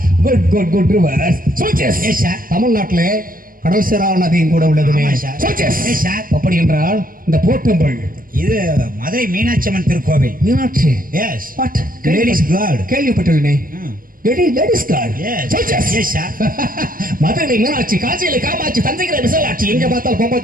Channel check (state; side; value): late; left; 0.41 ms